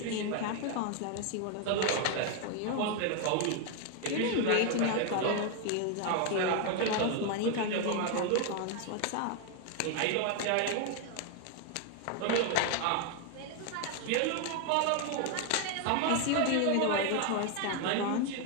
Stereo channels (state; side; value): different; both; correlation 0.01